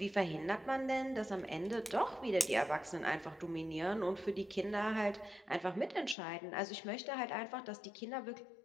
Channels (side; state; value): right; drops out; at 6.2 s